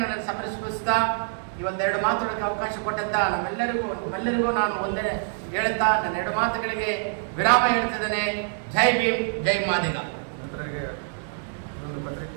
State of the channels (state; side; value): silent; left; digital silence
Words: ಸಮರ್ಪಿಸ್ತಾ ಈ ಒಂದೆರಡು ಮಾತುಗಳಿಗೆ ಅವಕಾಶ ಕೊಟ್ಟಂತ ನಮ್ಮೆಲ್ಲರಿಗೂ ನಾನು ವಂದನೆ ಹೇಳುತ್ತಾ ನನ್ನ 2 ಮಾತುಗಳಿಗೆ ವಿರಾಮ ಹೇಳ್ತಿದ್ದೇನೆ. ಜೈ ಭೀಮ್, ಜೈ ಮಾದಿಗ. ಇದೊಂದು